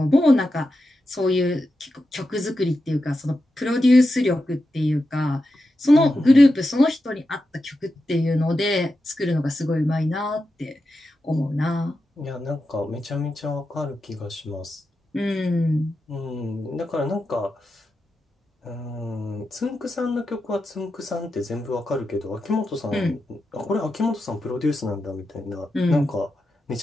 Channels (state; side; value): normal; both; correlation 0.89